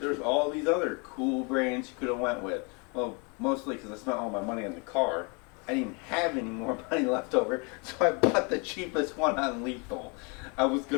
There's all these other cool brands you could have went with. Well, mostly because I spent all my money on the car. I didn't have any more money left over, so I bought the cheapest one on Lethal. I was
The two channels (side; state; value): right; quieter; 32.7 dB